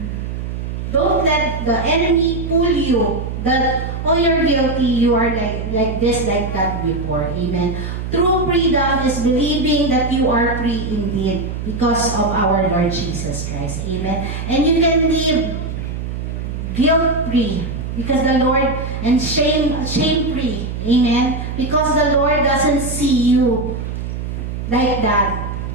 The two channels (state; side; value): noise; right; hum, 5 dB below the sound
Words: let the enemy pull you that, oh, you're guilty, you are like this, like that before. Amen. True freedom is believing that you are free indeed because of our Lord Jesus Christ. Amen. And you can live guilt-free because the Lord, and shame-free. Amen. Because the Lord doesn't see you like that.